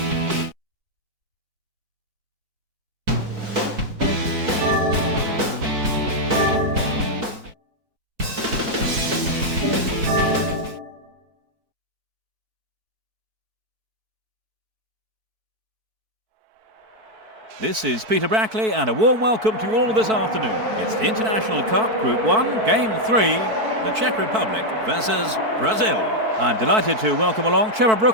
This is Peter Brackley and a warm welcome to you all this afternoon. It's the International Cup Group 1, Game 3, the Czech Republic versus Brazil. I'm delighted to welcome along Trevor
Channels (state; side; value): late; left; 4.6 ms